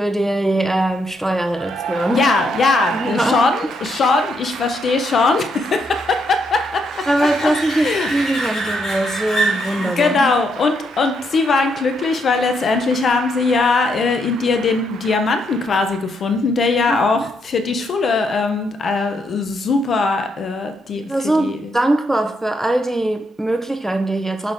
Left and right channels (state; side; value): normal; both; correlation 0.77